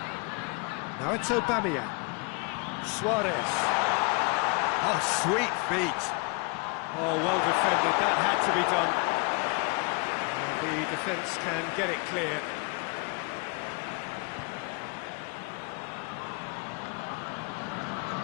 Now it's Aubameyang. Suarez. Oh, sweet feet. Oh, well defended. That had to be done. And the defence can get it clear.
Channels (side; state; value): right; quieter; 31.2 dB